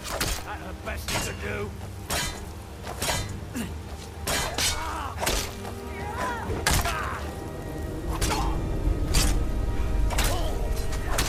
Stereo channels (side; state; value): both; identical; correlation 1.00